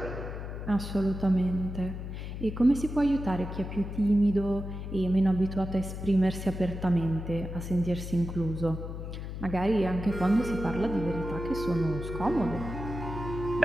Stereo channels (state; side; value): noise; left; hum, 7 dB below the sound